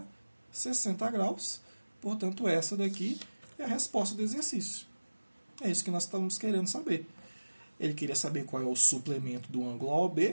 60 graus. Portanto, essa daqui é a resposta do exercício. É isso que nós estamos querendo saber. Ele queria saber qual é o suplemento do ângulo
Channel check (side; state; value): both; inverted; correlation -1.00